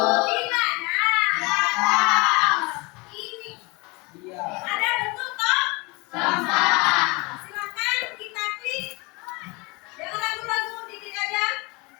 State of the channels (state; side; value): quieter; right; 26.8 dB